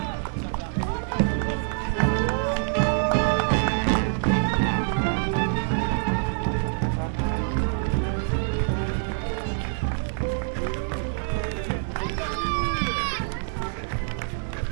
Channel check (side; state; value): left; silent; 57 dB below the other